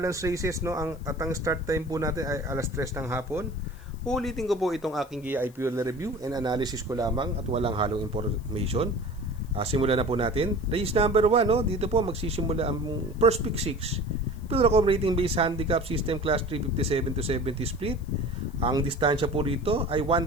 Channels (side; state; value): left; noise; hiss, 28 dB below the sound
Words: races, no? At ang start time po natin ay alas 3 ng hapon. Ulitin ko po itong aking giya ay pure review and analysis ko lamang at walang halong information. Simulan na po natin. Race number 1, no? Dito po magsisimula ang first pick 6. Pilracom rating based handicap system class 357 to 70 split. Ang distansya po rito ay